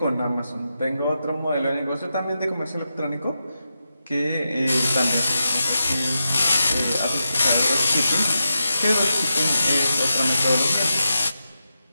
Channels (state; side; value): inverted; both; correlation -0.89